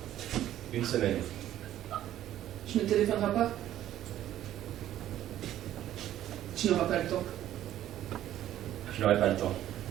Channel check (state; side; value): quieter; left; 12.5 dB